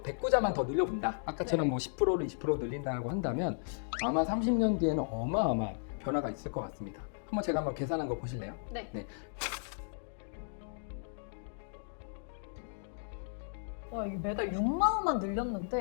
109자만 더 늘려본다. 아까처럼 네. 뭐 10%를 20% 늘린다고 한다면 아마 30년 뒤에는 어마어마한 변화가 있을 것 같습니다. 제가 한번 계산한 거 보실래요? 네. 와, 이게 매달 6만 원만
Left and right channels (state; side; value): silent; right; digital silence